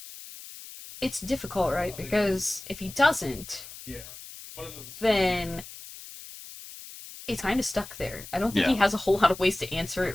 it's difficult, right? Because if he doesn't, then it's kind of stuck there. I don't think he Yeah. has a whole lot of ways to answer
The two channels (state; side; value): noise; left; hiss, 15 dB below the sound